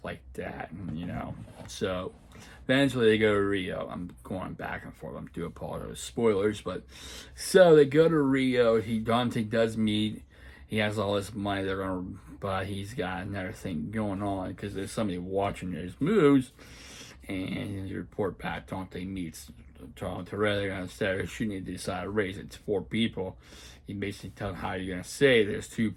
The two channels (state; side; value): identical; both; correlation 1.00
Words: like that, and. So eventually they go to Rio. I'm going back and forth. I'm doing apologize spoilers, but so they go to Rio. Dante does meet. He has all this money. But he's got another thing going on because there's somebody watching his moves, and you report back. Dante meets Tom Torelli instead of shooting. They decide to raise it to 4 people. He basically tells how you're gonna say there's 2